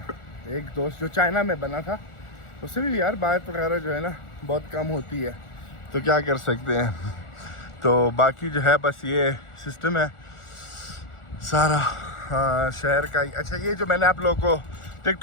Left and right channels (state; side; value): late; right; 1.4 ms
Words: एक दोस्त जो चाइना में बना था, उससे भी यार बात वगैरह जो है ना बहुत कम होती है, तो क्या कर सकते हैं। तो बाकी जो है बस ये सिस्टम है सारा शहर का। अच्छा ये जो मैंने आप लोगों को